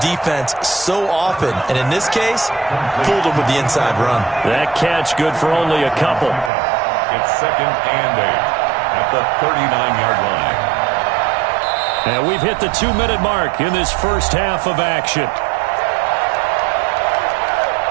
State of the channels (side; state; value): left; drops out; at 6.5 s